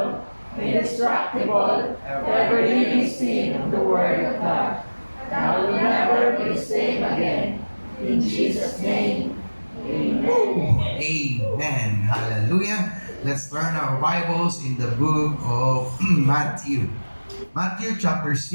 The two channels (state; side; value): inverted; both; correlation -1.00